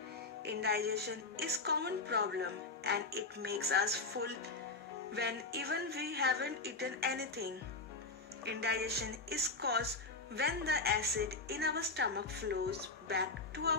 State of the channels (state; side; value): quieter; right; 3.6 dB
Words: Indigestion is common problem and it makes us full when even we haven't eaten anything. Indigestion is caused when the acid in our stomach flows back to